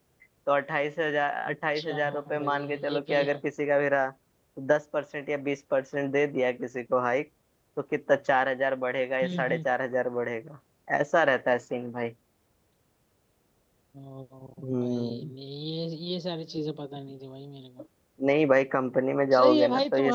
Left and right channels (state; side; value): identical; both; correlation 1.00